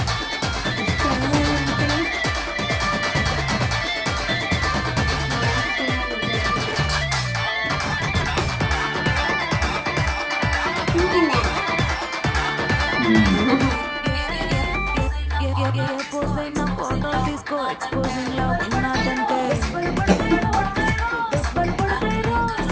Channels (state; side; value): identical; both; correlation 1.00